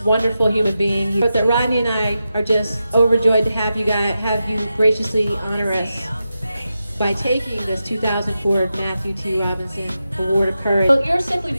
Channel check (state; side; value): inverted; both; correlation -0.90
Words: wonderful human being. But that Rodney and I are just overjoyed to have you graciously honor us by taking this 2004 Matthew T. Robinson Award of Courage. Well, you're simply